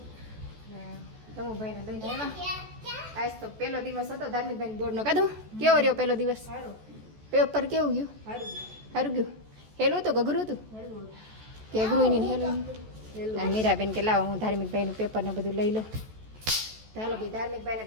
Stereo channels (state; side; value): late; left; 14 ms